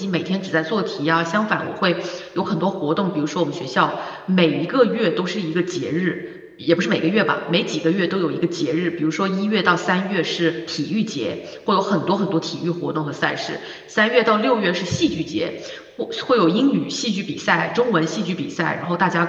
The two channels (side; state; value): both; identical; correlation 1.00